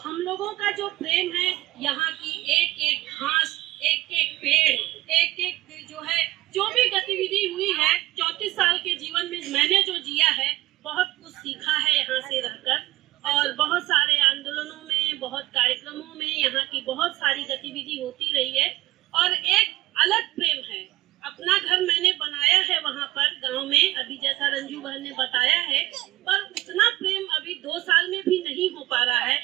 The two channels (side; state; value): left; quieter; 17.2 dB